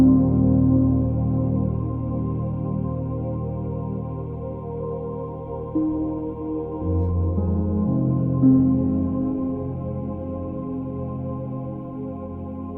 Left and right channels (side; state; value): both; identical; correlation 1.00